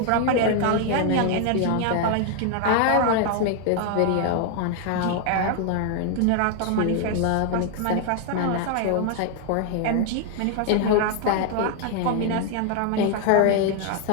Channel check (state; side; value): different; both; correlation 0.00